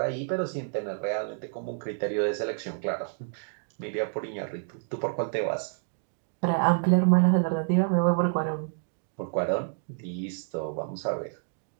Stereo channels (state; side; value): silent; left; digital silence